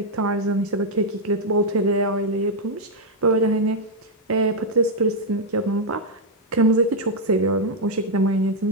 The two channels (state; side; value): normal; both; correlation -0.01